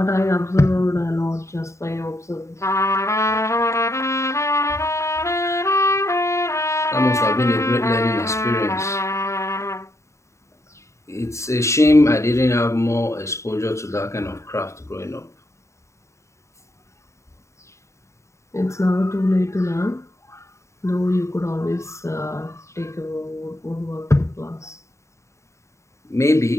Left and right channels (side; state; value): right; late; 0.14 ms